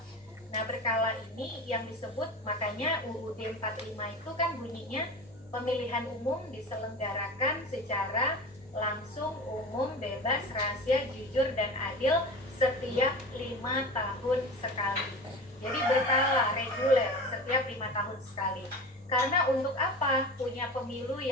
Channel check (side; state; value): both; normal; correlation 0.32